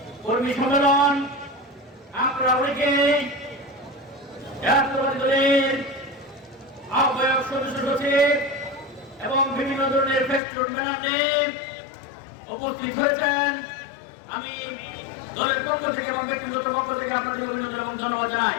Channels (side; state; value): right; drops out; at 10.4 s